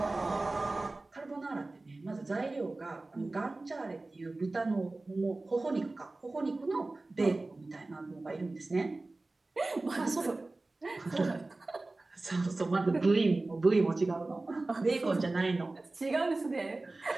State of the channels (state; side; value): quieter; left; 3.1 dB